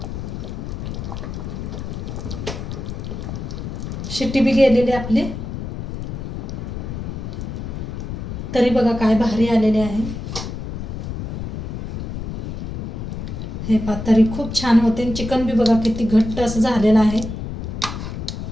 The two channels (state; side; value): noise; left; rumble, 6 dB below the sound